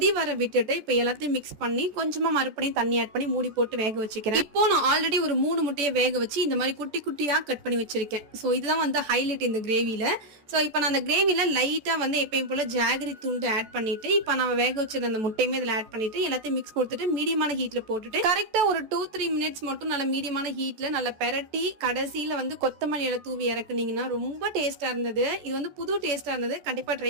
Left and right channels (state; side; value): late; left; 14 ms